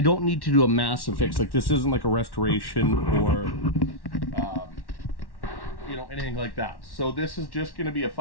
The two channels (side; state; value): right; late; 1.1 ms